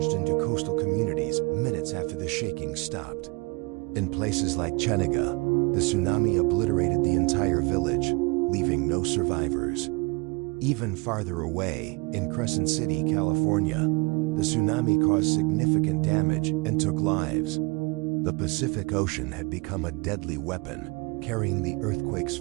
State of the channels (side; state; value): left; quieter; 28.2 dB